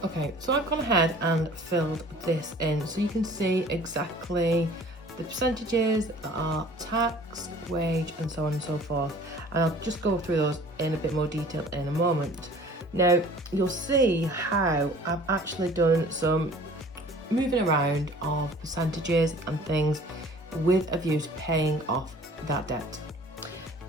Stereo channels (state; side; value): normal; both; correlation 0.49